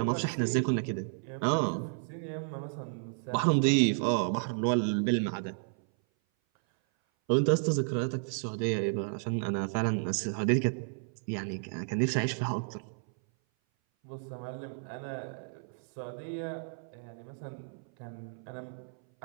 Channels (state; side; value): silent; left; 56 dB below the other